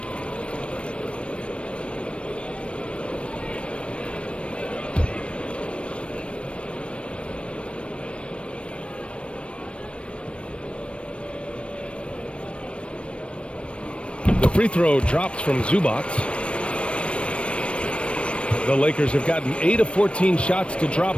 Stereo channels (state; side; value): late; right; 0.060 ms